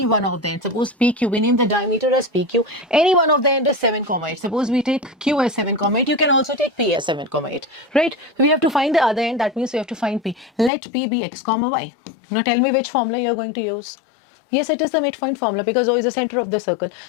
one of the end, suppose PQ, we name the diameter as PQ. Any one of the end is 7, 8. Suppose we take Q as 7, 8. You can also take P as 7, 8. Right? So we have to find the other end. That means we have to find P. Let P be x, y. Now tell me which formula you are going to use. Yes, it is the midpoint formula because O is the center of the circle.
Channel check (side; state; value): right; drops out; at 10.7 s